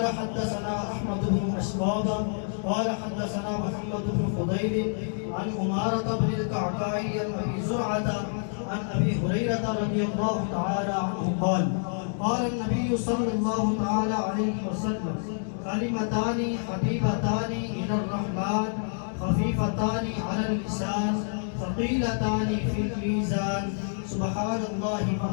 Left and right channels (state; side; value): silent; right; digital silence